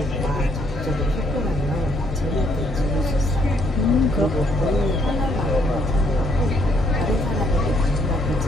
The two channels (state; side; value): normal; both; correlation 0.69